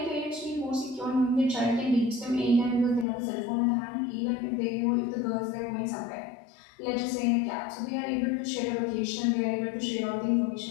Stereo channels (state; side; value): drops out; right; at 3.1 s